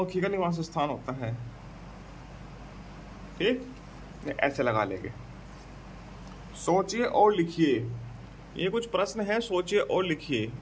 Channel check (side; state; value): both; identical; correlation 1.00